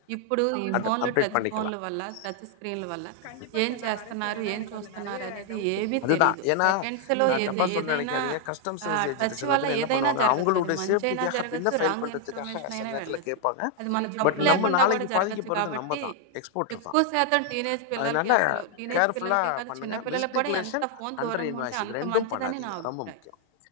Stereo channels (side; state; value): both; different; correlation 0.00